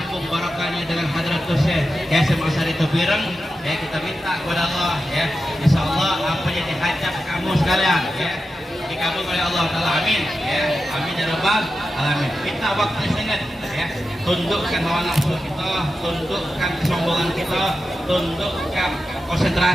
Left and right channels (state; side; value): normal; both; correlation 0.91